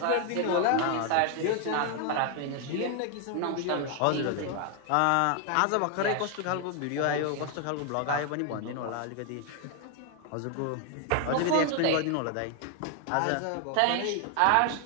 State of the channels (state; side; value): different; both; correlation 0.00